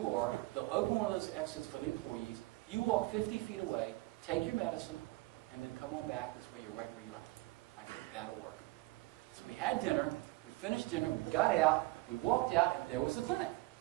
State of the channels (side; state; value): left; quieter; 21.3 dB